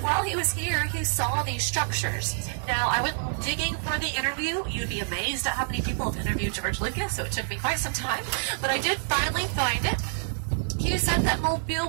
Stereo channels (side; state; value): left; silent; 60 dB below the other